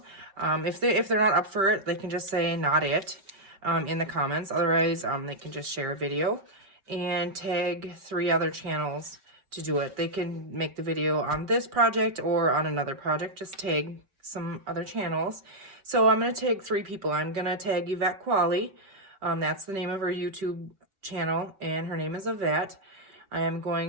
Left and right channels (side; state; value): left; late; 5.2 ms